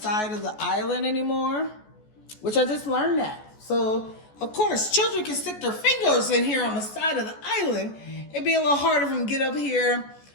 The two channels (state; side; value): late; right; 14 ms